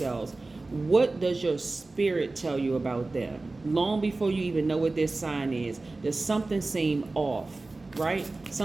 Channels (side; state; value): left; quieter; 3.3 dB